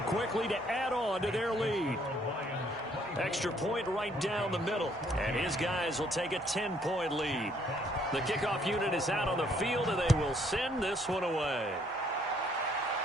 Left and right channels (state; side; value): normal; both; correlation 0.66